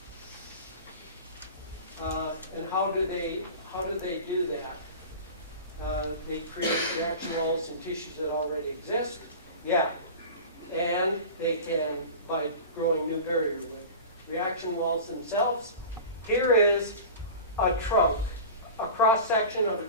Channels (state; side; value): inverted; both; correlation -0.34